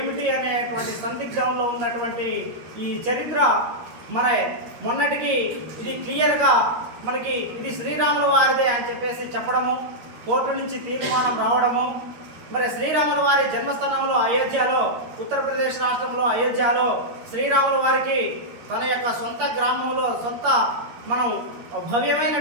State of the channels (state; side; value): late; left; 13 ms